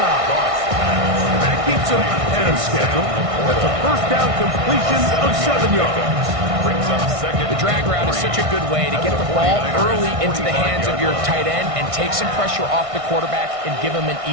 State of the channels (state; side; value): late; left; 1.6 ms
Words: And that keeps him ahead of schedule. That's a first down completion of 7 yards. Brings up 2nd. The drag route is such a good way to get the ball early into the hands of your tight end and take some pressure off the quarterback and give him an